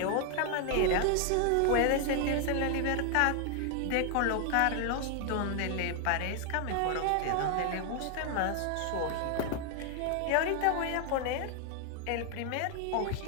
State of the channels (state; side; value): different; both; correlation 0.00